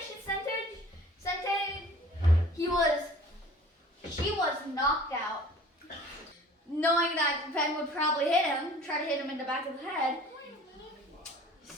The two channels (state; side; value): normal; both; correlation 0.48